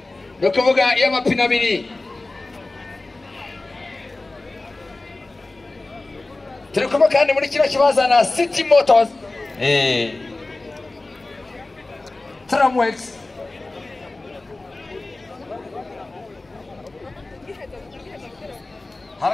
nakavuga iyo amapine abiri turi kumwe kandi muri kino kibazo na City Motors Tramwex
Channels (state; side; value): quieter; right; 3.1 dB